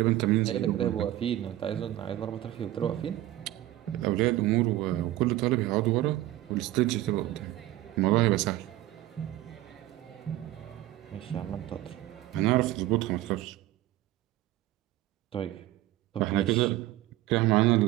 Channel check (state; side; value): quieter; left; 15.4 dB